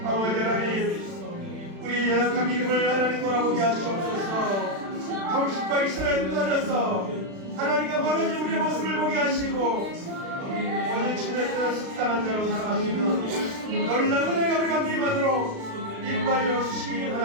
하나님 우리 연약한 믿음을 하나님 돌아보게 하시옵소서. 형식과 이스라엘 떠나서 하나님과 멀어진 우리의 모습을 보게 하시고 오직 주님의 뜻에 숙당한 자로 살아가시는 놀라운 은혜가 우리 가운데 임하도록 인도하여 주시기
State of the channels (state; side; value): late; left; 36 ms